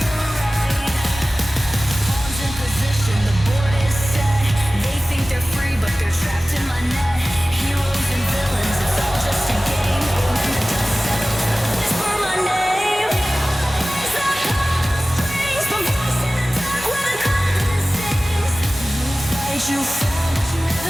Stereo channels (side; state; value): both; normal; correlation 0.97